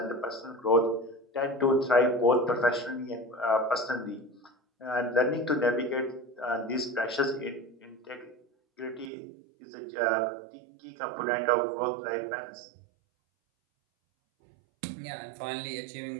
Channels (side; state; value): left; drops out; at 9.1 s